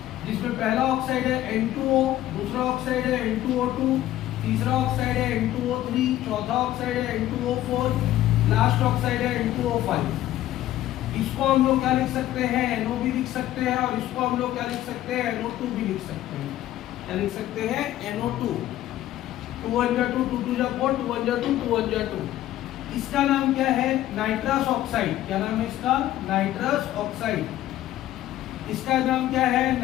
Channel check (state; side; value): quieter; right; 13.8 dB